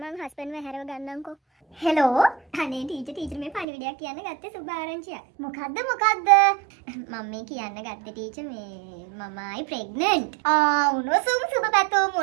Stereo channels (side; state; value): left; drops out; at 3.7 s